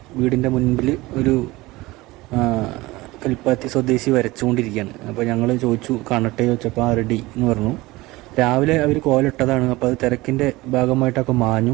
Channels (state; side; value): quieter; left; 20.3 dB